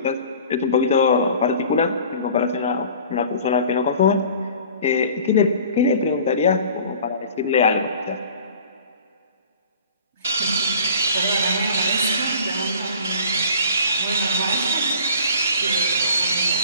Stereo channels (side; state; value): both; inverted; correlation -0.46